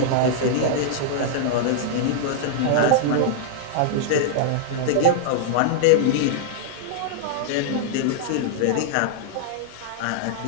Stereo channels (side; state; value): both; different; correlation -0.01